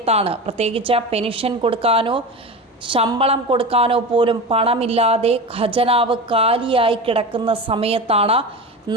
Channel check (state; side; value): normal; both; correlation 0.27